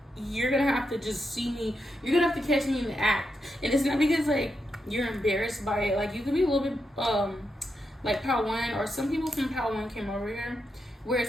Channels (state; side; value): normal; both; correlation 0.85